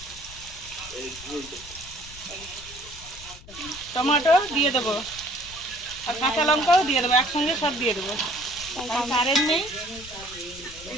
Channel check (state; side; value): noise; left; rumble, 18 dB below the sound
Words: টমেটো দিয়ে দেবো, আর কাঁচা লঙ্কাও দিয়ে দেবো, একসঙ্গে সব দিয়ে দেবো। কারেন্ট নেই,